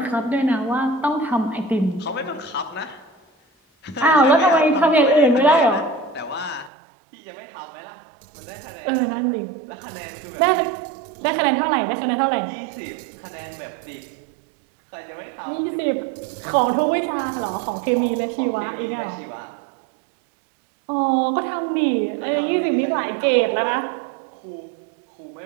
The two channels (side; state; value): left; drops out; at 6.7 s